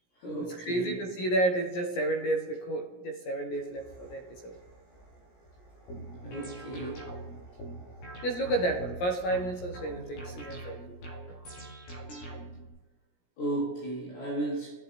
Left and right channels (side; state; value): right; late; 17 ms